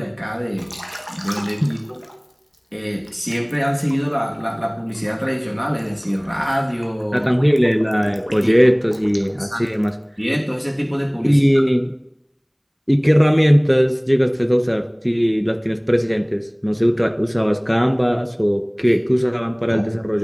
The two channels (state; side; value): identical; both; correlation 1.00